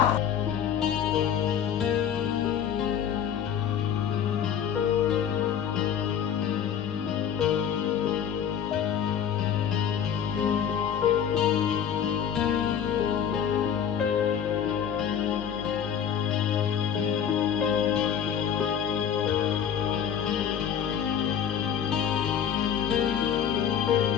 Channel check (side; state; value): right; quieter; 8.6 dB